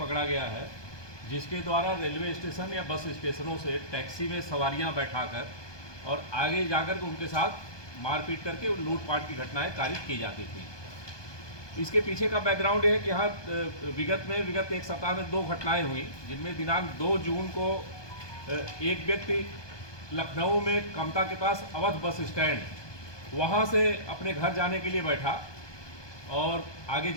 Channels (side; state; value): right; late; 1.2 ms